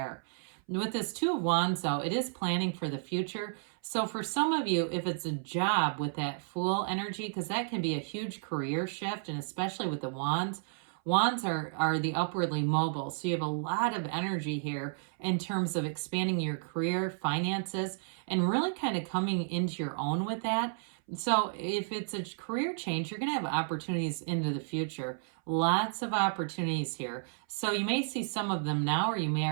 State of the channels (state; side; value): silent; left; 56 dB below the other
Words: With this Two of Wands, though, it is planning for the future. So for some of you, if it's a job with that Fool energy, because that can be a huge career shift, and especially with the Wands, Wands are the upwardly mobile. So you have a lot of energy here in terms of expanding your career, finances, and really kind of coming into your own with that. So if it's a career change, you're going to have opportunities into the future. Lots of opportunities here. So you may see some of them now, or you may